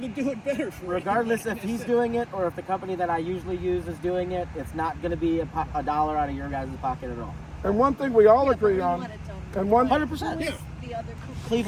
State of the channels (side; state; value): both; identical; correlation 1.00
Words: do it better for regardless if everybody. he's doing it or if the company that I usually use is doing it, it's not going to be a dollar out of your guys' pocket at all. And one thing we all Yeah, but agree we on, want it done and right. one 100%. Who Yeah. is the other company?